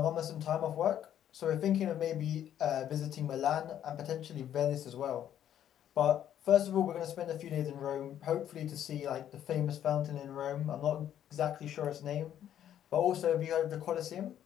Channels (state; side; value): quieter; right; 10.6 dB